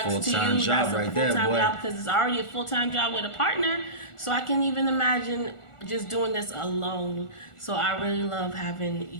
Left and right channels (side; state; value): right; late; 1.4 ms